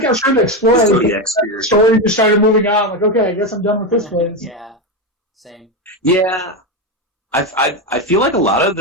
I was trying to explore the story, just started moving on. Like, okay, I guess I'm done with this place. Yeah. Same. Yeah, I feel like a lot of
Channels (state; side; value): normal; both; correlation 0.12